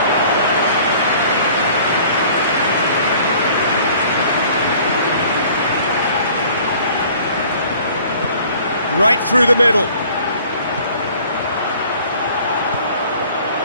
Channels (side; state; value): both; inverted; correlation -0.51